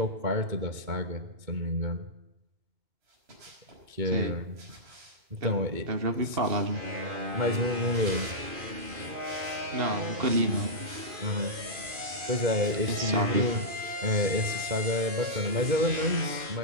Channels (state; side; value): late; left; 2.5 ms